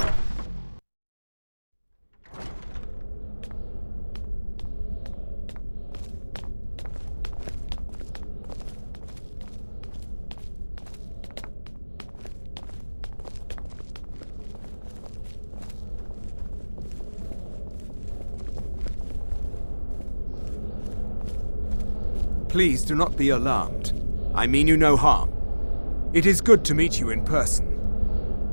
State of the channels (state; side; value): inverted; both; correlation -1.00